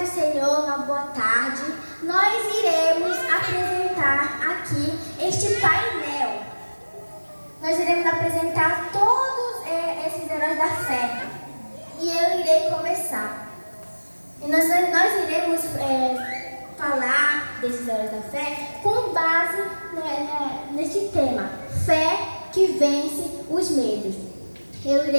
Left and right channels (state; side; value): inverted; both; correlation -1.00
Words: do Senhor, uma boa tarde. Nós iremos apresentar aqui este painel. Nós iremos apresentar todos esses heróis da fé. E eu irei começar. E nós iremos falar desses heróis da fé com base neste tema: fé que vence os medos. Eu